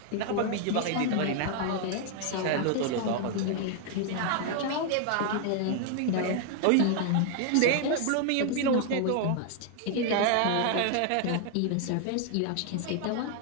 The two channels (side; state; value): both; different; correlation 0.00